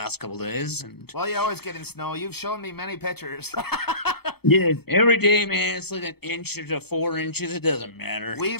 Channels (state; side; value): late; right; 0.96 ms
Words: couple days. And Well, you always get in snow. You've shown me many pictures. yeah, every day, man, it's like an inch to 4 inches. It doesn't matter. We